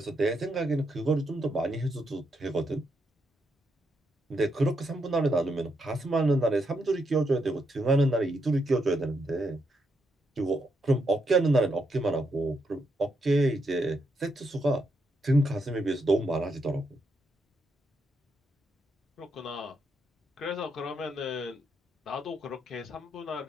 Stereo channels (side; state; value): both; normal; correlation 0.80